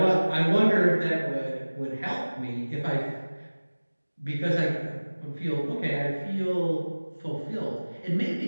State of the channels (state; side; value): inverted; both; correlation -1.00